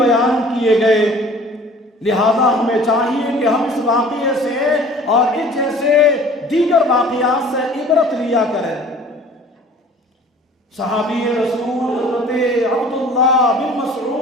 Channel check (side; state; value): both; normal; correlation 0.48